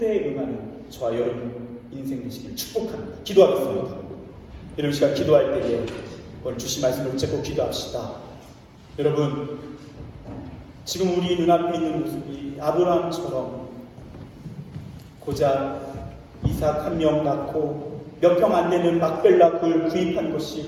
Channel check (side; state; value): both; identical; correlation 1.00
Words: 응하는 저와 여러분 인생 되시길 축복합니다. 기도하겠습니다. 이런 시간 기도할 때에 오늘 주신 말씀을 붙잡고 기도합시다. 여러분, 지금 우리 눈앞에 있는 모습이 아브라함처럼 고작 이삭 한 명 낳고 몇 평 안 되는 막벨라 굴 구입한 것이